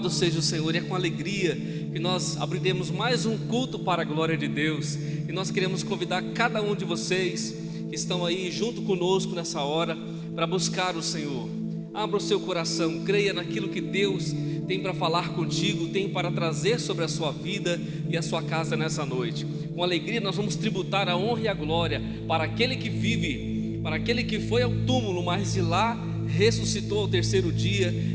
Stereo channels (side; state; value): both; identical; correlation 1.00